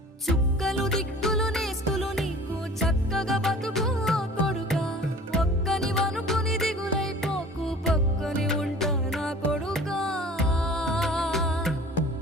చుక్కలు దిక్కులు నేస్తులు నీకు చక్కగా బతుకు కొడుకా. ఒక్కని వనుకుని దిగులైపోకు, పక్కని ఉంటా నా కొడుకా.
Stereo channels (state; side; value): normal; both; correlation 0.44